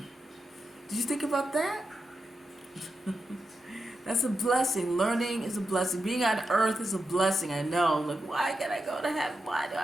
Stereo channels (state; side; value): normal; both; correlation 0.87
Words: Did you think about that? That's a blessing. Learning is a blessing. Being on earth is a blessing. I know. Like, why can I go to heaven? Why do